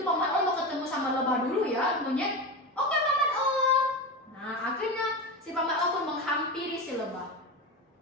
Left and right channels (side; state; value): both; normal; correlation 0.22